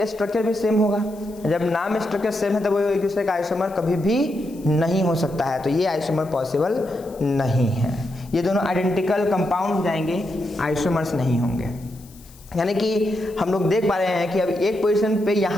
स्ट्रक्चर भी सेम होगा। जब नाम स्ट्रक्चर सेम है तो वो एक दूसरे का आइसोमर कभी भी नहीं हो सकता है, तो ये आइसोमर पॉसिबल नहीं है। ये दोनों आइडेंटिकल कंपाउंड हो जाएंगे, आइसोमर्स नहीं होंगे। यानी कि हम लोग देख पा रहे हैं कि अब एक पोजीशन पे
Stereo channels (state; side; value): noise; left; hiss, 24 dB below the sound